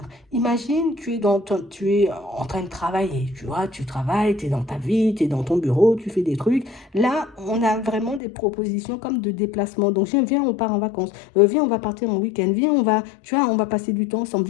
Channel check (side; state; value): right; drops out; at 8.2 s